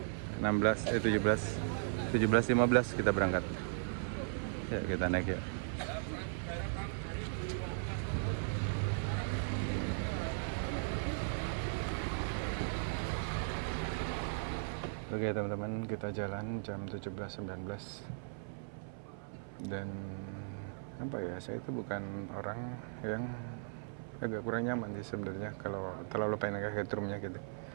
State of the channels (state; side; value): silent; left; 53 dB below the other